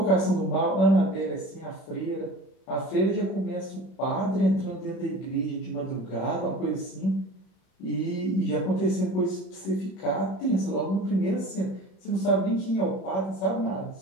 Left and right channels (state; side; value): late; right; 31 ms